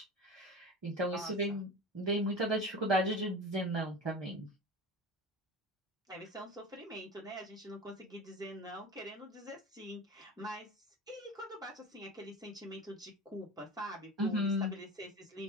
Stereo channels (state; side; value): normal; both; correlation 0.32